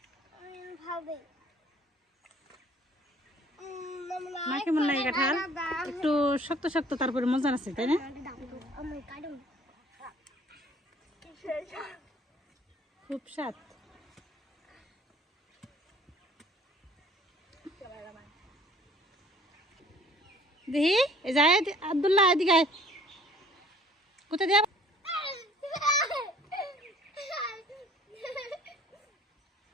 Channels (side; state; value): both; normal; correlation 0.55